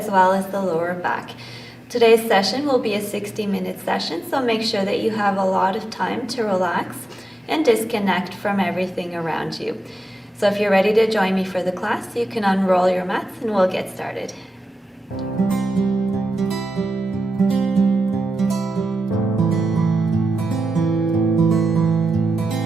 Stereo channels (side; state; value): both; normal; correlation 0.90